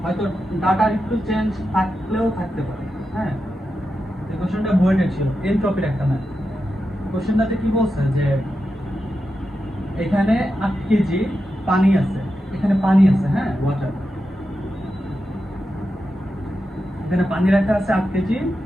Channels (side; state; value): both; normal; correlation 0.89